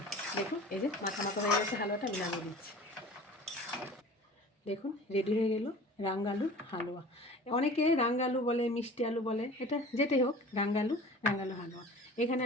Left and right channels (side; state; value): both; normal; correlation 0.42